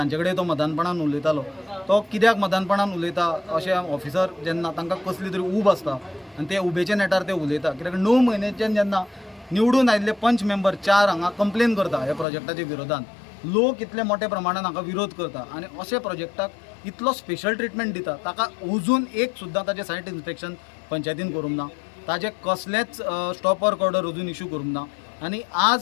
कडेन तो मदानपणान उलयतालो. तो कित्याक मदानपणान उलयता अशें ऑफिसर जेन्ना तांकां कसली तरी ऊब आसता आनी ते उबेच्या नेटार ते उलयता. कित्याक 9 म्हयन्याच्यान जेन्ना निवडून आयिल्ले पंच मेंबर 4 हांगा कंप्लेन करता ह्या प्रोजेक्टाच्या विरोधान, लोक इतले मोठ्या प्रमाणान हांगा विरोध करता आनी अशे प्रोजेक्टाक इतलो स्पेशल ट्रिटमेंट दिता, ताका अजून एक सुद्दां ताजें सायट इन्स्पेक्शन पंचायतीन करूंक ना, ताजें कसलेंच स्टॉप वर्क ऑर्डर अजून इश्यू करूंक ना. आनी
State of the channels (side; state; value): right; drops out; at 12.2 s